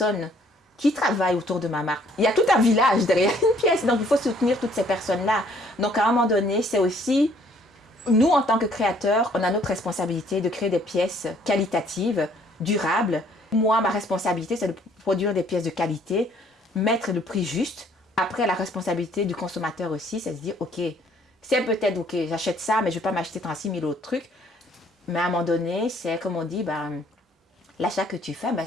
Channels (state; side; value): normal; both; correlation 0.62